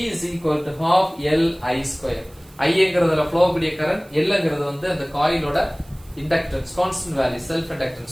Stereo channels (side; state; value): right; noise; hiss, 27 dB below the sound